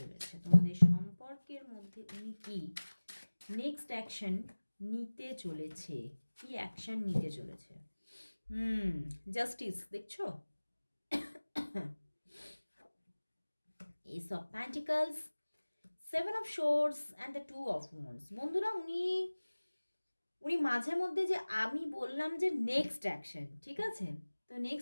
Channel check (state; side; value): inverted; both; correlation -1.00